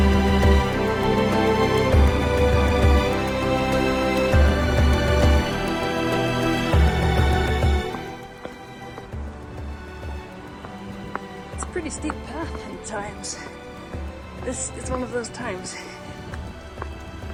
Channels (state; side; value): identical; both; correlation 1.00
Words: Pretty steep path at times. This is one of those times.